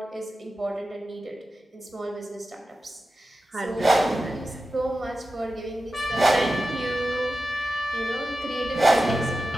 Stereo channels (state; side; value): normal; both; correlation 0.93